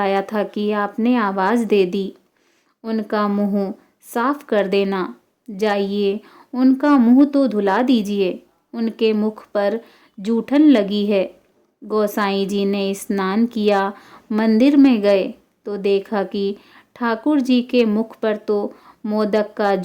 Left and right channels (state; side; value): identical; both; correlation 1.00